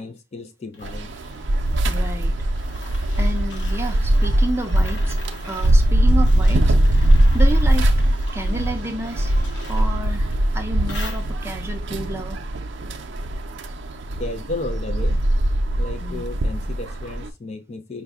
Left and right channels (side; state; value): both; normal; correlation 0.91